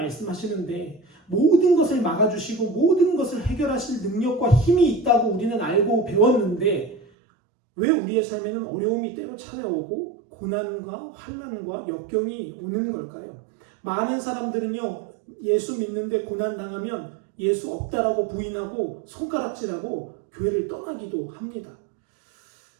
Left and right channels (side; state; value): left; drops out; at 7.1 s